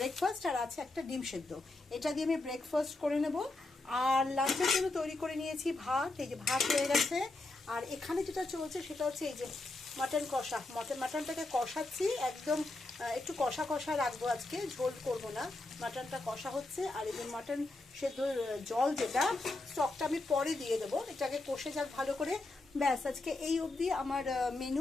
আর আছে একটা ডিম সেদ্ধ, এটা দিয়ে আমি ব্রেকফাস্ট করে নেব। আর লাঞ্চের জন্য তৈরি করে নিয়েছি ভাত, এই যে ভাত হয়ে গেছে। আর এখানে যেটা চলছে সেটা হচ্ছে এই যে মাটন কষা, মাটনটাকে কষাচ্ছি একদম, একটু কষা কষা রাখবো আজকে, ঝোল করব না। মাটনটা কষা হচ্ছে। আর এই যে মাটন সেদ্ধ জল, যেটা স্টকটা আমি পরে দিয়ে দেবো, এটাকে কষে যাক ভালো করে। ব্যাস, আজকে এই অবধি আমার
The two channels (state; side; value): quieter; right; 3.0 dB